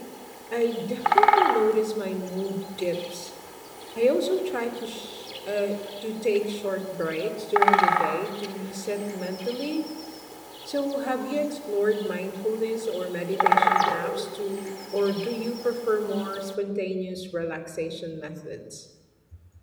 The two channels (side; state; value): both; identical; correlation 1.00